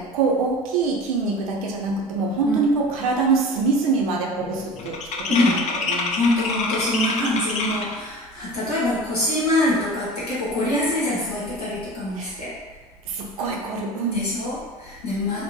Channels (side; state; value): both; normal; correlation 0.35